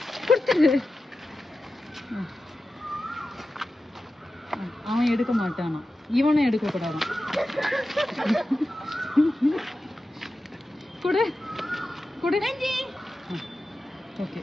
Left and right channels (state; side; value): normal; both; correlation 0.93